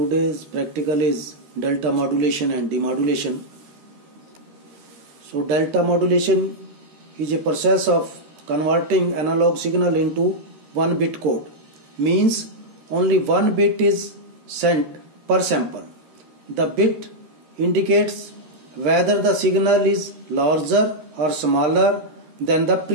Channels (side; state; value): left; late; 13 ms